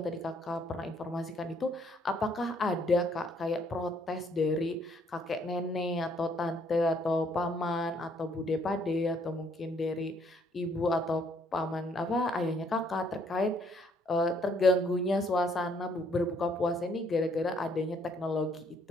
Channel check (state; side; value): normal; both; correlation 0.67